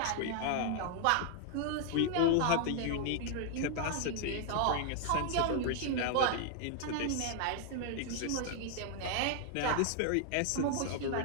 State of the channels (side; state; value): both; different; correlation 0.00